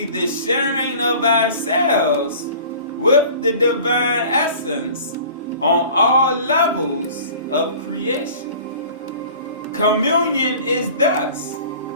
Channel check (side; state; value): both; inverted; correlation -0.44